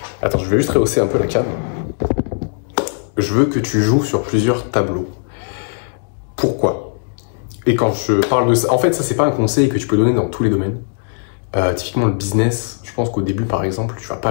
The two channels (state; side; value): silent; right; digital silence